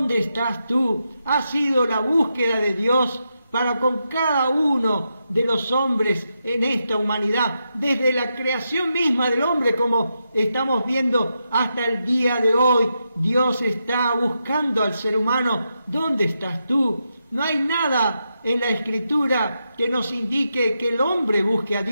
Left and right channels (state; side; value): inverted; both; correlation -0.85